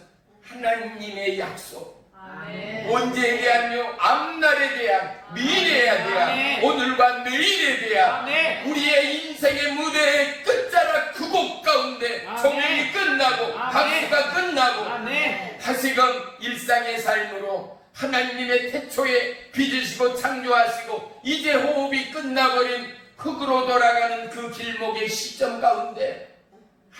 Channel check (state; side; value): identical; both; correlation 1.00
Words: 하나님의 약속. 아멘. 언제에 대한요? 앞날에 대한, 미래에 대한, 아멘. 오늘과 내일에 대한 아멘. 우리의 인생의 무대의 끝자락 그 곡 가운데 아멘. 종일이 끝나고 아멘. 박수가 끝나고 아멘. 다시금 일상의 삶으로 하나님의 태초에 빚으시고 창조하시고 이제 호흡이 끝나버린 흙으로 돌아가는 그 길목의 시점 가운데